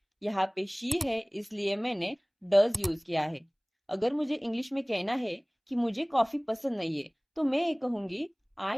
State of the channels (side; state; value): both; identical; correlation 1.00